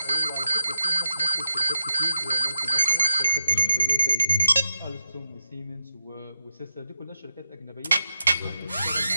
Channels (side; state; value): both; inverted; correlation -0.83